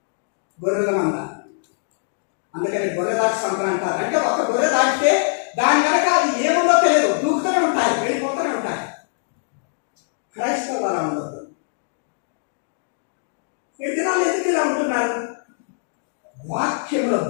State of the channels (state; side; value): silent; right; digital silence